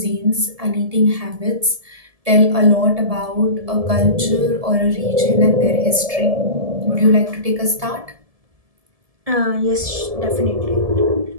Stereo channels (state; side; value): late; left; 1.7 ms